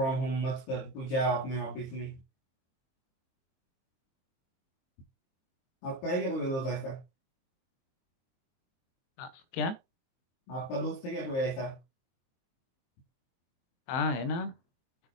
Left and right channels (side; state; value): right; late; 23 ms